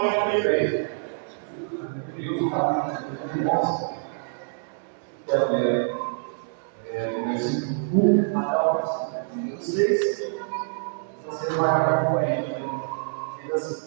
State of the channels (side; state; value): left; silent; digital silence